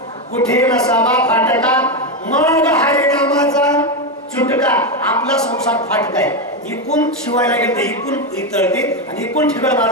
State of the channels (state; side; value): normal; both; correlation 0.09